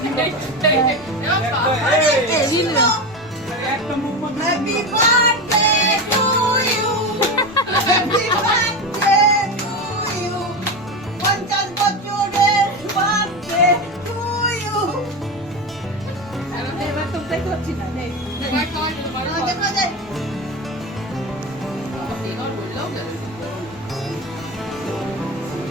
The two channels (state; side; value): normal; both; correlation 0.20